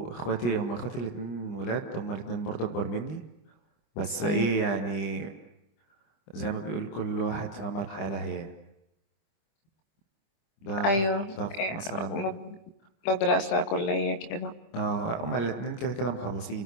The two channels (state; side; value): late; right; 25 ms